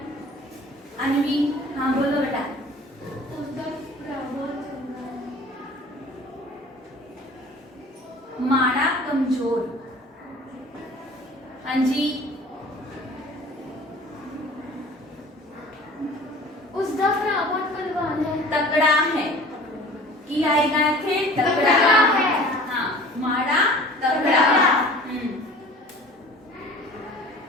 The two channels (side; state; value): both; normal; correlation 0.45